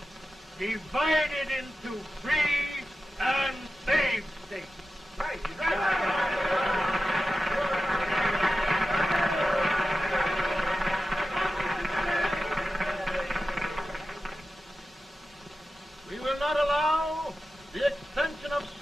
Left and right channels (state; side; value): normal; both; correlation 0.92